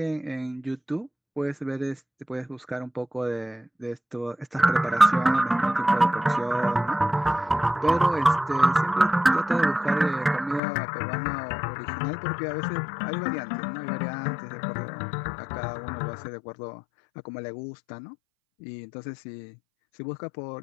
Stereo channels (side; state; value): right; drops out; at 10.6 s